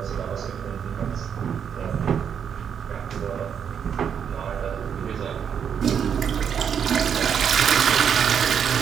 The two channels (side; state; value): left; quieter; 7.8 dB